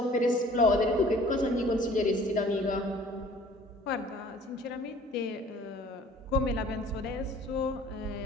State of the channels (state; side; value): normal; both; correlation 0.51